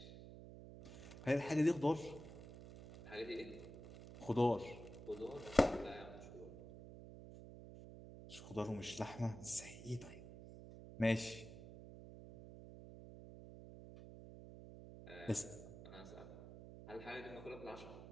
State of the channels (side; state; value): right; noise; hum, 13 dB below the sound